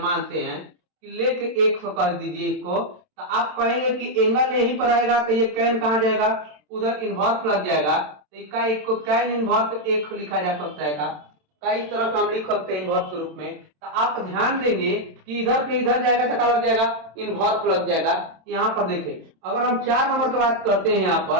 मानते हैं कि लेके एक कर दीजिए इसको, तो आप कहेंगे कि एंगल यहीं पर आएगा, तो ये कैन कहाँ जाएगा, उधर इन्वर्स लग जाएगा, तो इसका एक को कैन इन्वर्स एक लिखा जा सकता है का, कई तरह का हम लिख सकते हैं इन्वर्स के रूप में। तो आप ध्यान देंगे कि इधर से इधर जाएगा तो क्या लग जाएगा, इन्वर्स लग जाएगा। यहाँ पर देखिए अगर हम 4 नंबर की बात करते हैं यहाँ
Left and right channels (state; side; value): late; left; 27 ms